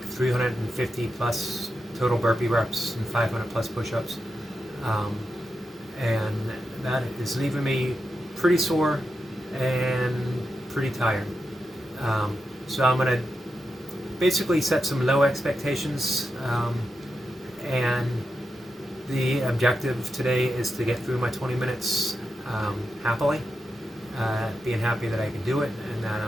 350 plus total burpee reps and 500 plus push-ups. Um, and that is leaving me pretty sore and pretty tired. So I'm going to basically set some low expectations, and the objective today is to get through my 20 minutes happily, being happy that I can do it and that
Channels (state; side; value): normal; both; correlation 0.88